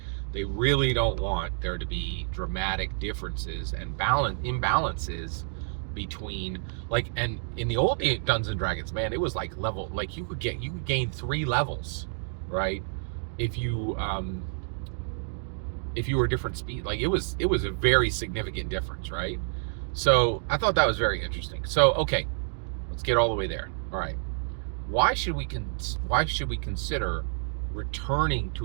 really don't want there to be dramatic differences and imbalances between, like, and in the old Dungeons and Dragons, man, it was like level, like you could gain 3 levels, right? If you were different speed, like it was a very significant difference, right? So I thought that was very interesting. So okay, let's get all the way there. All right, why should we consider returning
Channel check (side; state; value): left; silent; digital silence